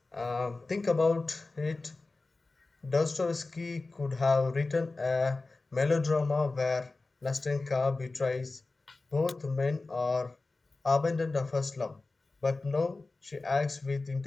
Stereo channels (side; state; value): right; quieter; 3.5 dB